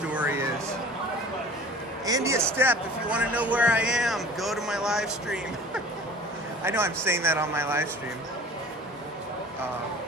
is. Andy a step, if you want to know where I am, go to my live stream. I know I'm saying that on my live stream.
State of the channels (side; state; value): both; normal; correlation 0.44